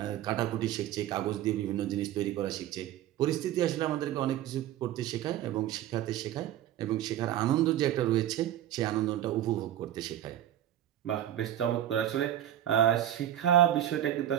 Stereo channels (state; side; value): quieter; left; 12.0 dB